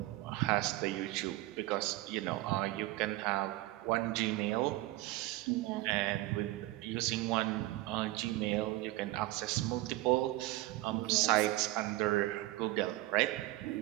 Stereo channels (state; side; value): quieter; left; 17.9 dB